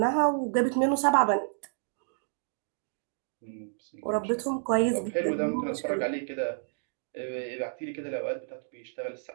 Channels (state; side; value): silent; left; digital silence